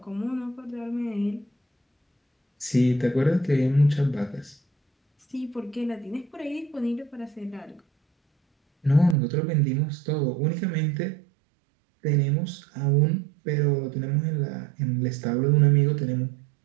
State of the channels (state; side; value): drops out; left; at 9.2 s